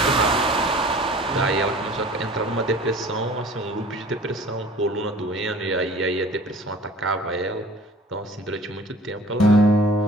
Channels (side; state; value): both; normal; correlation 0.46